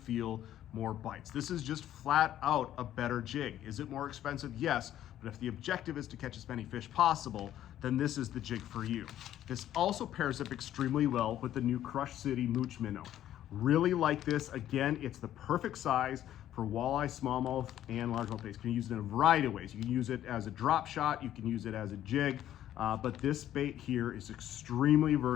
more bites. This is just flat out a better jig. Is it more expensive? Yes, but if the objective is to catch as many fish possible, then this is the jig for you. This also pairs up extremely well with the new Crush City Mooch Minnow. Really like this. Again, it's the perfect size for walleye, smallmouth, and largemouth baits. You can use it in a variety of ways. You can use it as a drop shot, you can use it as a jig, but this bait here is extremely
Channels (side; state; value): right; quieter; 12.0 dB